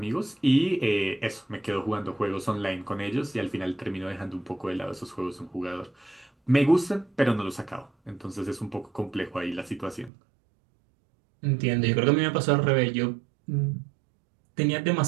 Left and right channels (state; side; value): drops out; left; at 10.1 s